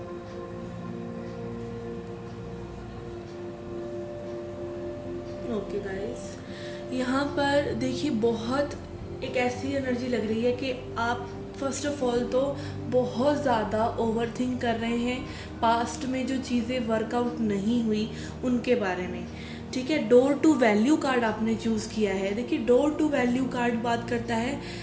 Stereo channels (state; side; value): identical; both; correlation 1.00